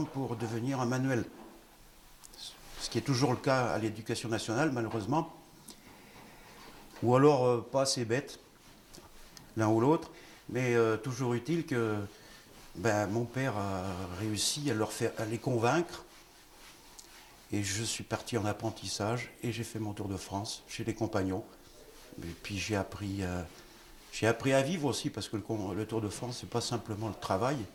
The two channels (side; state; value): both; identical; correlation 1.00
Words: pour devenir un manuel. Ce qui est toujours le cas à l'éducation nationale, malheureusement. Ou alors pas assez bête, l'un ou l'autre. Mais toujours utile que mon père a réussi à les convaincre. Et je suis parti en apprentissage et j'ai fait mon Tour de France chez les Compagnons. Et puis j'ai appris J'ai appris à vivre aussi, parce que le Tour de France, c'est pas simplement le travail,